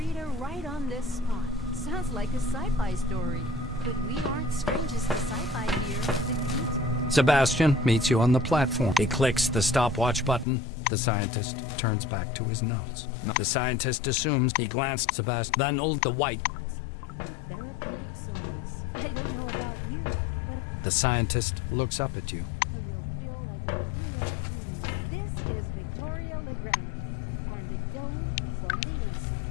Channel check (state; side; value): drops out; right; at 10.5 s